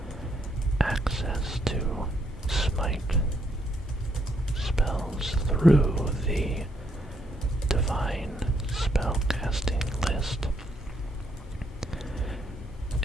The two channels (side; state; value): both; normal; correlation 0.74